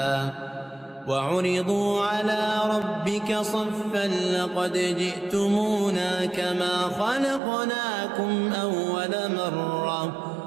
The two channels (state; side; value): drops out; left; at 7.4 s